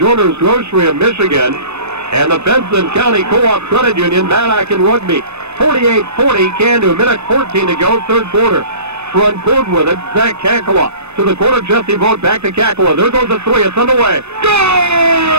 Grocery of Michigan and the Benson County Co-op Credit Union, Maddock and Rugby. 48-40, Candu. Minute 14 to go, third quarter. Front court with it, Zach Kakala. To the corner, Jesse Vogt, back to Kakala. There goes the 3, it's underway.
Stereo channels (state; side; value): late; left; 0.81 ms